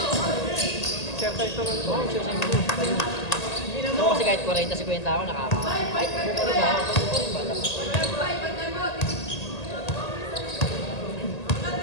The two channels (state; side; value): late; right; 1.8 ms